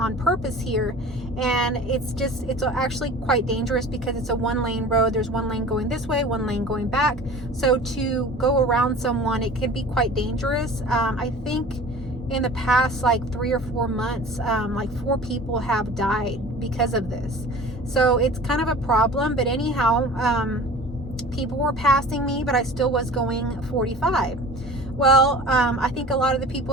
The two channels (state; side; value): normal; both; correlation 0.41